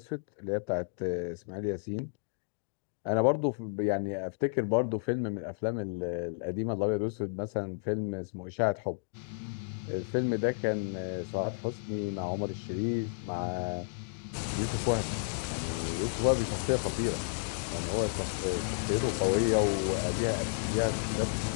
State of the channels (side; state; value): right; silent; digital silence